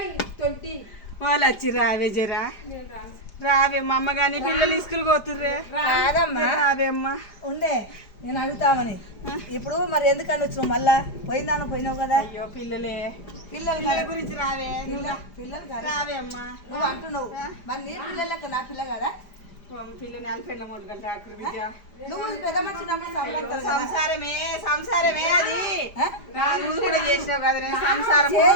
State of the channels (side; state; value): right; late; 4.9 ms